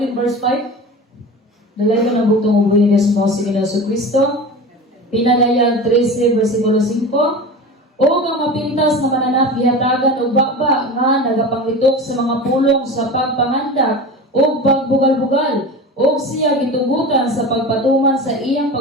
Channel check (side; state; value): both; normal; correlation 0.31